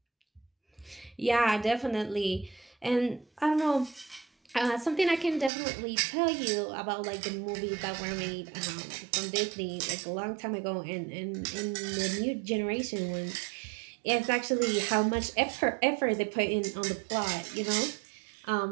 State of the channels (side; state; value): left; drops out; at 5.5 s